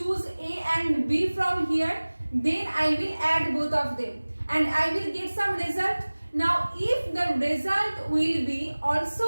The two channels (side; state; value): both; inverted; correlation -1.00